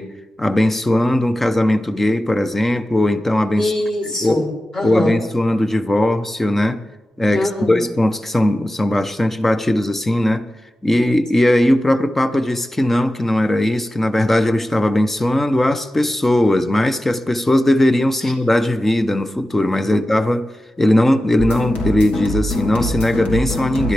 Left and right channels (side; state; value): both; normal; correlation 0.94